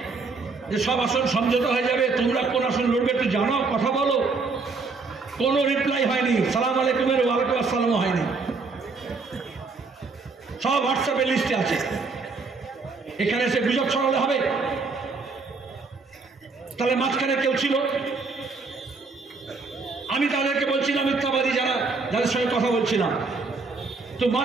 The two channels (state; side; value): quieter; left; 4.2 dB